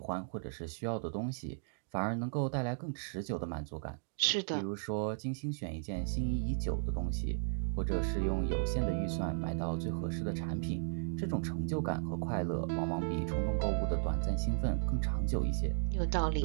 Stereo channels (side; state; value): left; silent; digital silence